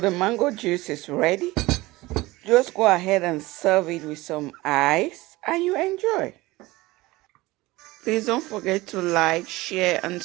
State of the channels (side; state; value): left; quieter; 20.0 dB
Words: mango juice is ready. Just go ahead and serve it with some ice and you enjoy. Please don't forget to like, share, and